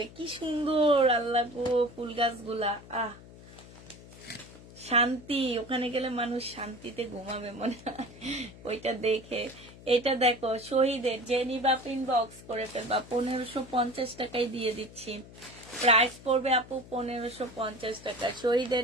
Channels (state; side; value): noise; left; hum, 19 dB below the sound